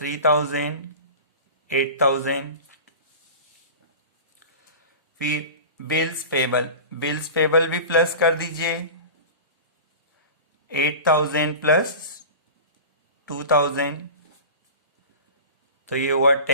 8000। फिर बिल्स पेबल, बिल्स पेबल भी प्लस कर दीजिए 8000 प्लस 2000, तो ये हुआ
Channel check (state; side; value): inverted; both; correlation -0.34